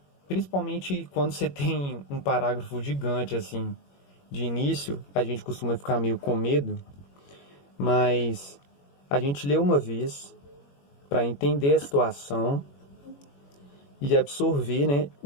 principalmente quando você tem um parágrafo gigante assim, de início, a gente costuma ficar meio com medo, mas a gente lê uma vez para entender a situação e absorver, né,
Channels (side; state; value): right; late; 21 ms